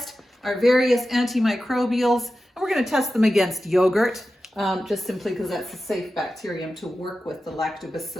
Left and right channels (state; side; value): normal; both; correlation 0.93